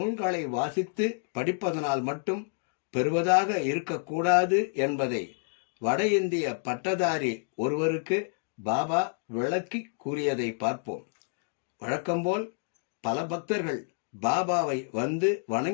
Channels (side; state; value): right; silent; 59 dB below the other